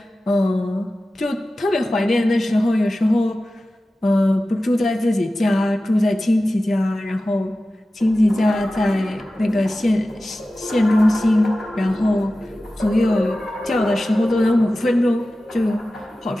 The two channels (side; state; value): both; normal; correlation 0.95